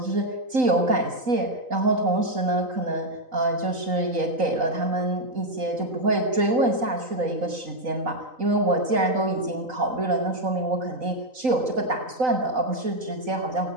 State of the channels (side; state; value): left; late; 3.9 ms